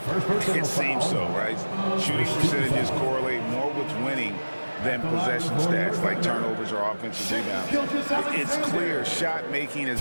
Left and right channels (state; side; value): inverted; both; correlation -1.00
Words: It seems so, right? Shooting percentages correlate more with winning than possession stats like turnovers or offensive rebounds. It's clear shot making has